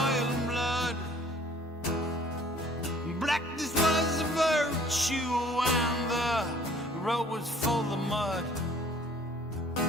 and blood. Blackness was a virtue and the road was full of mud.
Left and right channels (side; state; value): both; normal; correlation 0.55